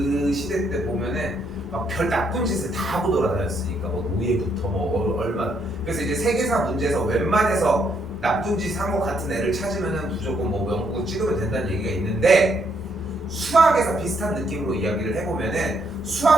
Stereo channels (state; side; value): normal; both; correlation 0.73